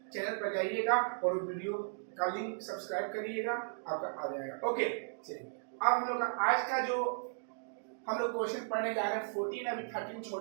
चैनल पर जाइएगा और वीडियो का लिंक सब्सक्राइब करिएगा, आपका आ जाएगा, ओके। चलिए, अब हम लोग का आज का जो हम लोग क्वेश्चन पढ़ने जा रहे हैं 14, अभी 13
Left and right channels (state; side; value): silent; left; digital silence